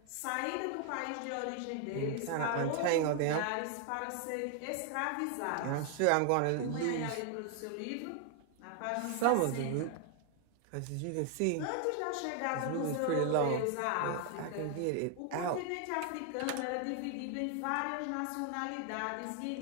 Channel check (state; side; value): different; both; correlation 0.00